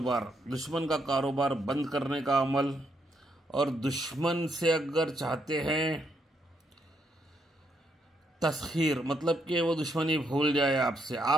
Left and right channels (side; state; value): both; normal; correlation 0.76